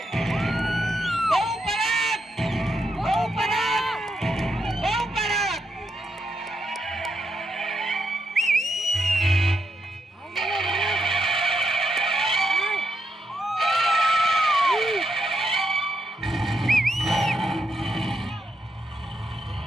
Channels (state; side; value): normal; both; correlation 0.81